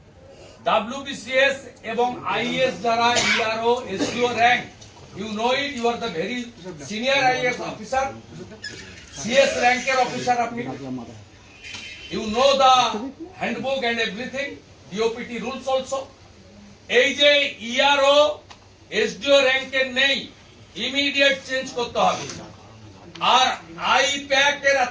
ডাব্লিউবিসিএস এবং আইএস যারা ERO SDO rank, you know it, you are the very senior IAS officer, CS র্যাঙ্কের অফিসার আপনি, you know the handbook and everything, DOPT rules also. এই যে ইআরও এসডিও র্যাঙ্কের নেই, ইমিডিয়েট চেঞ্জ করতে হবে। আর আইপ্যাক এর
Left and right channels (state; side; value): identical; both; correlation 1.00